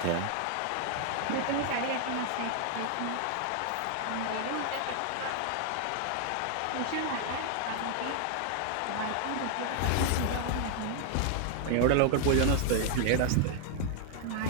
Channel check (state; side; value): different; both; correlation 0.00